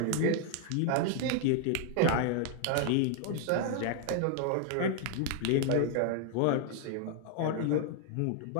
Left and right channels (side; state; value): both; different; correlation 0.00